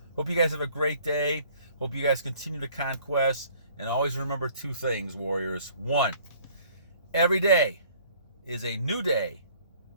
Hope you guys have a great day. Hope you guys continue to conquest. And always remember two things, warriors. One, every day is a new day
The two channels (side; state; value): both; inverted; correlation -0.56